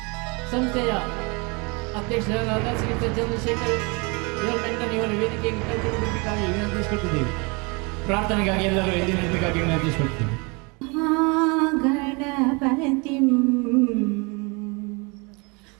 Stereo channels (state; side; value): quieter; left; 29.8 dB